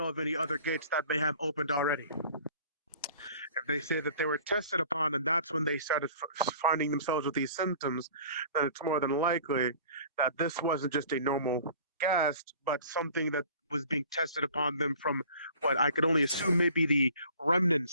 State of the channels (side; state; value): both; inverted; correlation -0.48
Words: of any other gates that they have opened already. If they say that they were tested upon and that's when they started finding themselves with these symptoms, then it's more than likely that this wasn't just a normal gas, but something that was being tested upon them from what I could only assume may be the